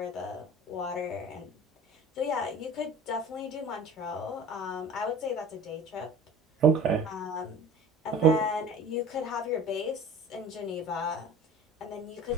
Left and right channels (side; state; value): both; normal; correlation 0.41